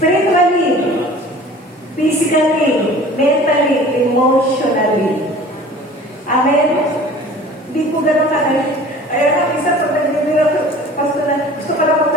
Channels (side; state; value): both; normal; correlation 0.45